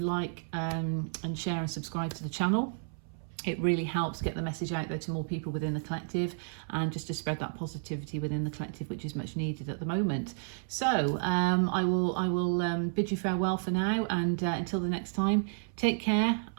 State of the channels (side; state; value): left; silent; 57 dB below the other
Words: and share and subscribe to the channel. It really helps get the message out there to more people within the collective, and just to spread that positivity within the collective, which is much needed at the moment. So I will bid you farewell for now, and until the next time, take care,